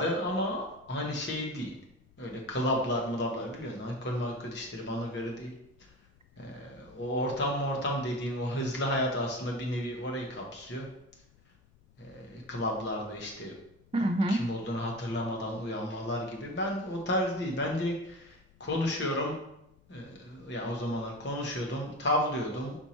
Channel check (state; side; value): noise; left; rumble, 29 dB below the sound